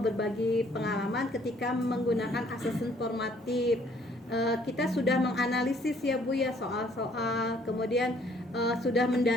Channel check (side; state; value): both; normal; correlation 0.62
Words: pengalaman ketika menggunakan asesmen formatif. Kita sudah menganalisis ya Bu ya soal-soal, kemudian sudah